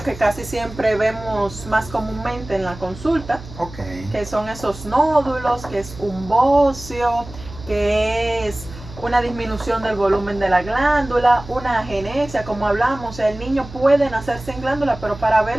que casi siempre vemos más comúnmente en la consulta, que son esos nódulos, que es un bocio, que es una disminución del volumen de la glándula, una agenesia, como hablamos. O sea, el niño puede nacer sin glándula, pero para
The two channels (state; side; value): noise; right; hum, 15 dB below the sound